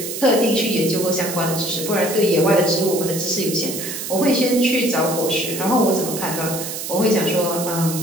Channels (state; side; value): noise; right; hiss, 7 dB below the sound